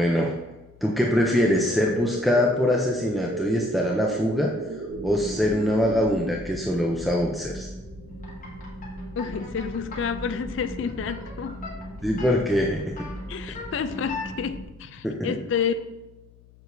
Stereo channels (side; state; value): left; noise; hum, 26 dB below the sound